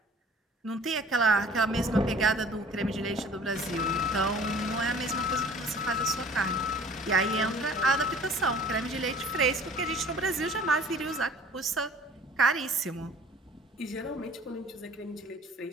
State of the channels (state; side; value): normal; both; correlation 0.49